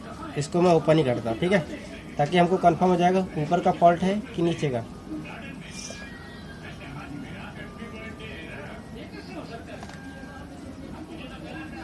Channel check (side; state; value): both; identical; correlation 1.00